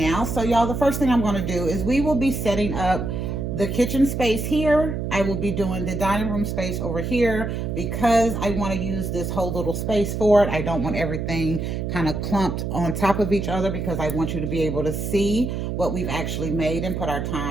So y'all, the first thing I'm going to do is we will be setting up the kitchen space here. I will be doing the dining room space over here because I want to use this whole little space for it. I don't want everything kind of clumped on top of each other because I want you to be able to see what we've actually made and put our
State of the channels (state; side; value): noise; right; hum, 3 dB below the sound